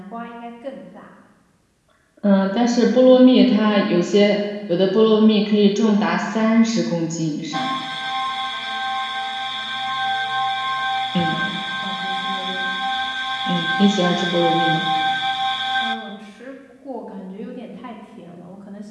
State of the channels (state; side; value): identical; both; correlation 1.00